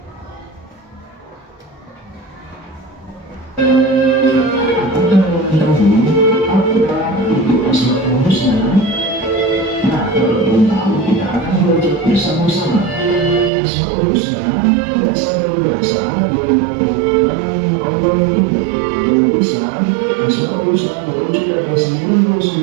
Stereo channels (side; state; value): left; drops out; at 13.5 s